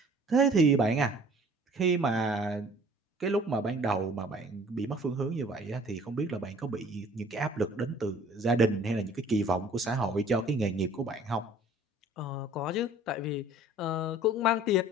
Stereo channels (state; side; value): normal; both; correlation 0.51